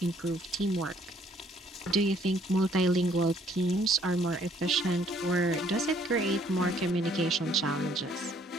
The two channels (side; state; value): both; normal; correlation 0.64